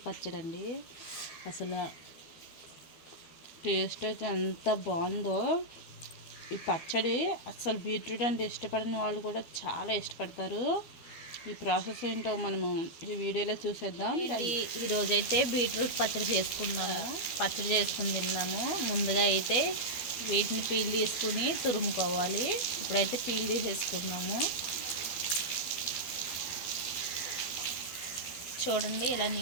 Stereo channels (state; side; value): late; right; 12 ms